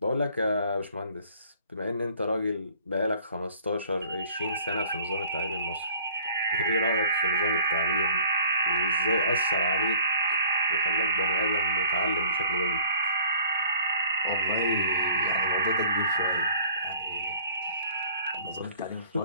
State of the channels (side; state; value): both; inverted; correlation -0.52